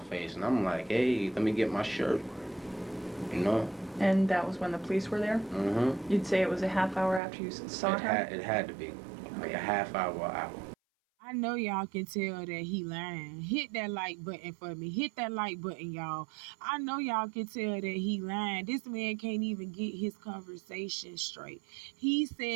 face. And I'm like, hey, let me get my shirt. You know? And that was when the police were there? Mm-hmm. You'd say it was a half hour after you saw her? It had to be. Like a half hour. I know y'all can tell that he lying. Hit that like button for me. Hit that like button, y'all. I know y'all can tell that he lying. This man can't even get his conversation straight. He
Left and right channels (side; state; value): left; drops out; at 7.2 s